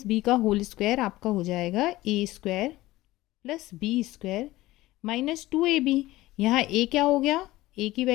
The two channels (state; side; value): quieter; right; 17.6 dB